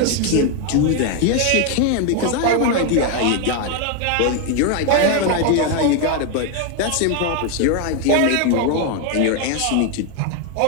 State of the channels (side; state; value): both; different; correlation 0.01